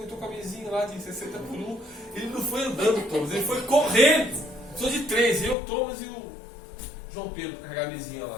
com a mesinha lá de 60 por 1. Ele não foi andando, Thomas, ele foi correndo. Sou de 3, eu, Thomas e o João Pedro, para carregar a mesinha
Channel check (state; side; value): drops out; right; at 5.6 s